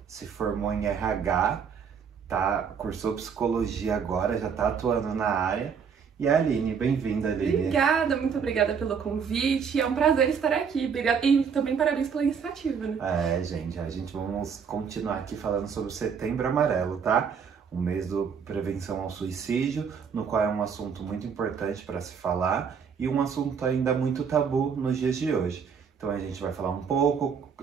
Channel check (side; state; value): left; quieter; 6.6 dB